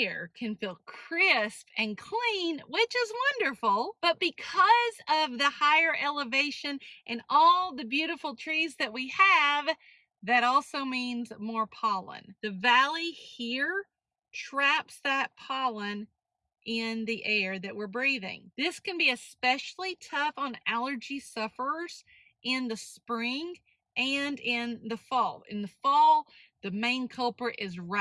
can feel crisp and clean, which is wonderful, but because of the higher elevation and all the beautiful trees that we have, that also means more pollen. The valley here traps that pollen in the air that we're breathing. This can be especially tough on allergy sufferers in the spring and in the fall. In the fall, the main culprit is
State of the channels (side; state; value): both; identical; correlation 1.00